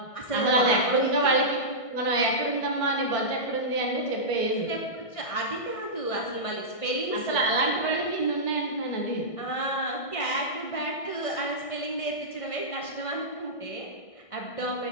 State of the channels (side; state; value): right; late; 1.6 ms